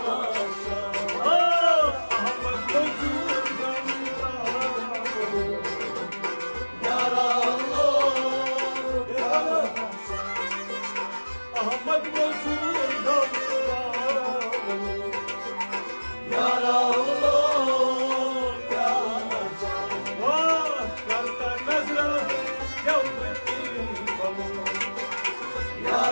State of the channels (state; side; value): inverted; both; correlation -1.00